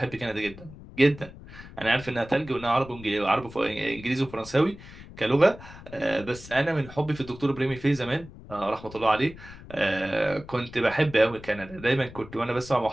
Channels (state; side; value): noise; left; rumble, 17 dB below the sound